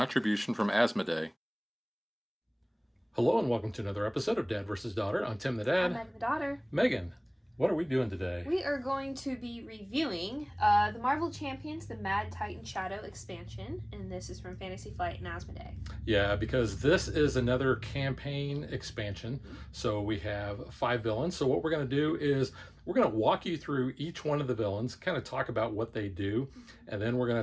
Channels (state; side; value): identical; both; correlation 1.00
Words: from Asmodee. Hello and welcome to another episode of Dad vs. Daughter. I'm Tim the Dad. I'm Megan the daughter. Megan, what are we doing today? We are going to be reviewing the Marvel Champions, the Mad Titan Shadow expansion, and this is from Fantasy Flight and Asmodee. Yeah, because this is another campaign expansion. So we have 5 villains. So what we're going to do is we're going to walk you through each one of the villains, kind of talk about what they do, and then we're going